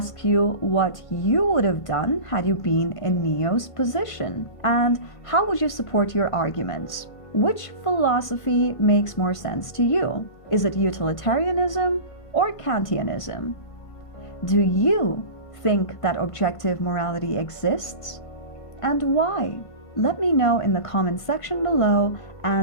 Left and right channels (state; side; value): late; right; 1.5 ms